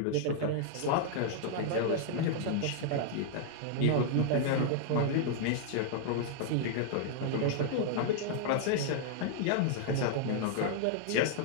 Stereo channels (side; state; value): both; different; correlation -0.01